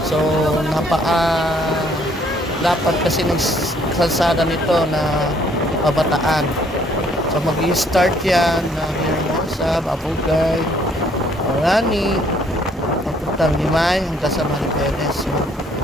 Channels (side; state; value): both; normal; correlation 0.64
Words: So, lapad kasi ng kalsada nito na pabataan. So, mag-i-start yan na Hermosa, Babugay, Orani, papuntang Limay, hanggang sa Maribeles. So,